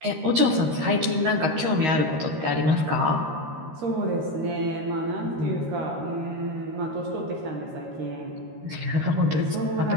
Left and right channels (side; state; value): left; late; 13 ms